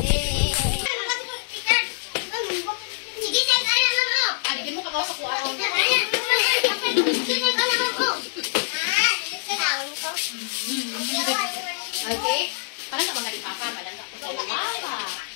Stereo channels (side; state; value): right; silent; digital silence